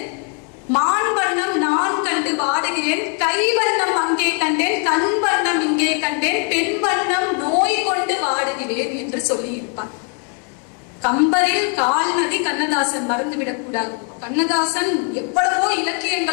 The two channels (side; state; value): right; quieter; 39.7 dB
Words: மான் வண்ணம் நான் கண்டு வாடுகிறேன், கை வண்ணம் அங்கே கண்டேன், கண் வண்ணம் இங்கே கண்டேன், பெண் வண்ணம் நோய் கொண்டு வாடுகிறேன் என்று சொல்லியிருப்பார். கம்பரில் கால்நதி கண்ணதாசன் மறந்துவிடக் கூடாது. கண்ணதாசன் எவ்வளவோ